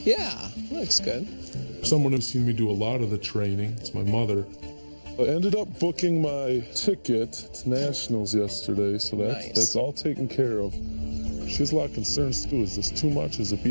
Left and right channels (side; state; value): both; inverted; correlation -1.00